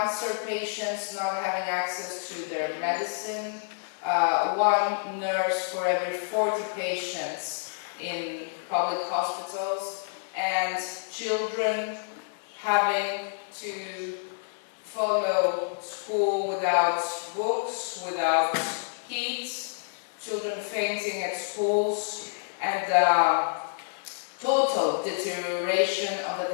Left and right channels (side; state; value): right; silent; 59 dB below the other